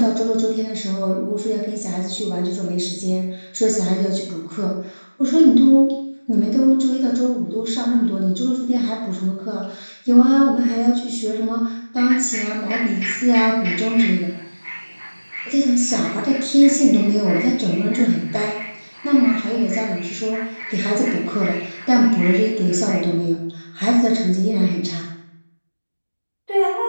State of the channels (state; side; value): inverted; both; correlation -1.00